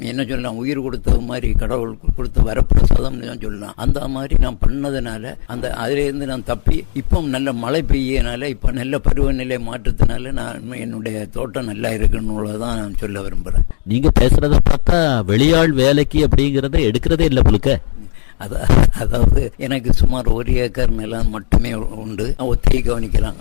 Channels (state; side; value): silent; right; digital silence